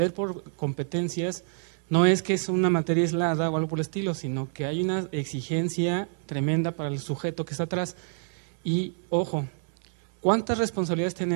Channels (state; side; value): silent; left; 60 dB below the other